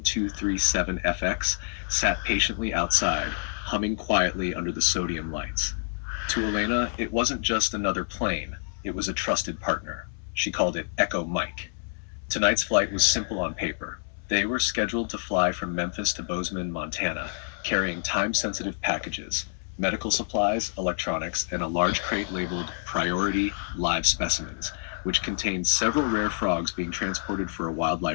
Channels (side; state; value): right; silent; 58 dB below the other